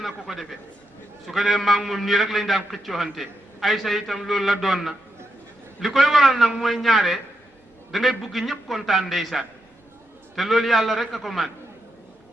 ko defee su ko defee maa ngi moom nii rek lañ daan xëccooxante Aysa itam loolu la doon na li koy waral nag mooy ñaare da ngay bugg ñëpp kontaan ndeysaan te loolu yàlla rek a ko man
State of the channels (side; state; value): both; normal; correlation 0.83